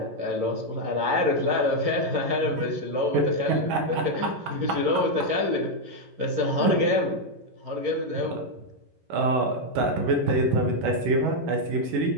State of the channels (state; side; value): late; left; 11 ms